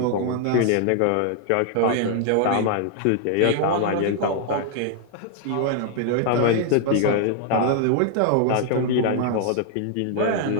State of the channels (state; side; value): different; both; correlation 0.00